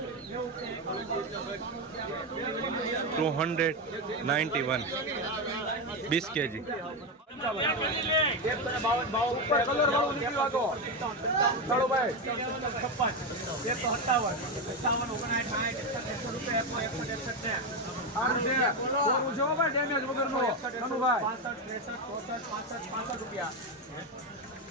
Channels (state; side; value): normal; both; correlation 0.11